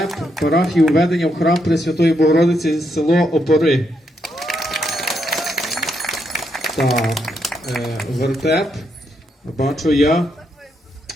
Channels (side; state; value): both; normal; correlation 0.79